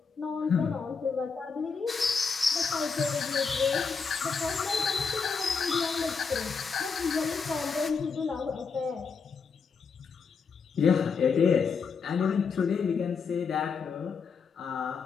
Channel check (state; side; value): quieter; right; 5.5 dB